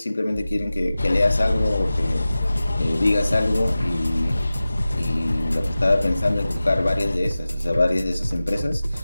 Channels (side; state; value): both; inverted; correlation -0.96